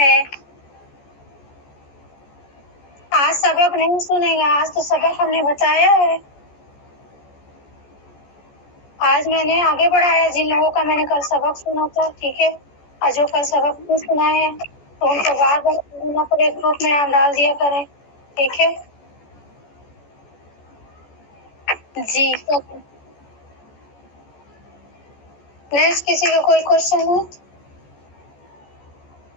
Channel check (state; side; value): late; right; 14 ms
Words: آج سبق نہیں سنے گا، آج تو سبق ہم نے بتایا ہے. آج میں نے آگے بڑھایا جن لوگوں کا میں نے کل سبق سنا تھا. ٹھیک ہے، اور جو کل سبق نہیں سنائے ہیں تو ان کو بار بار سننا پڑے، گروپ میں آپ ڈال دیا کریں. ٹھیک ہے جی. نیکسٹ کسی کا کوئی کوشچن ہے؟